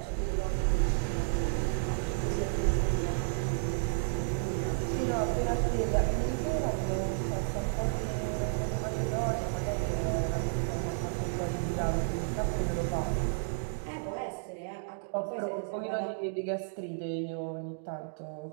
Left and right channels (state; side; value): silent; left; digital silence